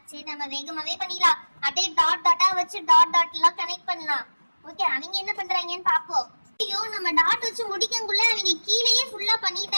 சரி நம்ம வேகமாவே பண்ணிடலாம். அப்படியே டாட் டாட்டா வச்சு டாட் டாட் எல்லாம் கனெக்ட் பண்ணலாம். ஓகே, அவங்க என்ன பண்றாங்கன்னு பாப்போம். ஐயோ நம்ம டாட் வச்சு முடிக்கக்குள்ள அவங்க கீழேயே ஃபுல்லா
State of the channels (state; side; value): inverted; both; correlation -1.00